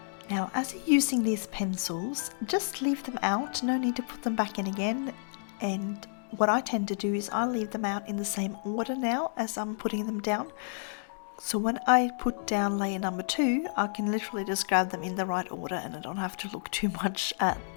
Now, as you're using these pencils, just leave them out, no need to put them back in again. And what I tend to do is I leave them out in the same order now as I'm putting them down. So when I put down layer number 2, I can literally just grab them in the right order and I don't have to look too much at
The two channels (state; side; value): silent; right; digital silence